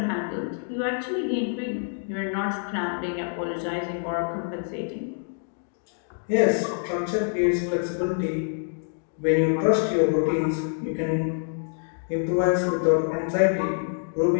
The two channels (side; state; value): right; silent; digital silence